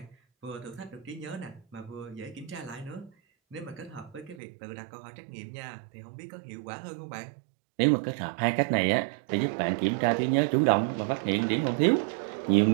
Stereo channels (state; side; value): drops out; left; at 4.4 s